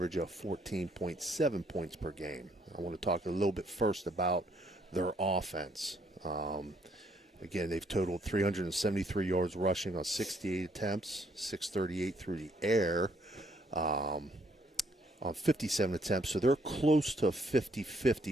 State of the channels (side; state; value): both; normal; correlation 0.68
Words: of 14.7 points per game. I want to talk a little bit first about their offense. Again, they've totaled 373 yards rushing on 68 attempts, 638 through the air on 57 attempts. So they're close to a